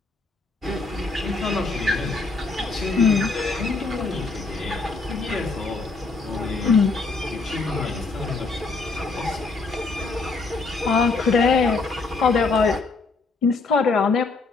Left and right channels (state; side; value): quieter; right; 3.9 dB